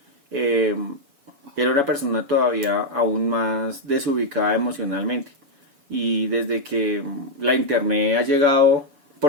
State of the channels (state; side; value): late; left; 7.1 ms